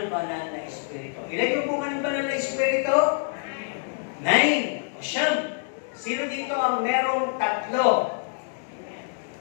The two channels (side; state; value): right; silent; digital silence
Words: banal na Espiritu. Ilan yung bunga ng banal na Espiritu? 9. O siyam. Sino dito ang merong 3?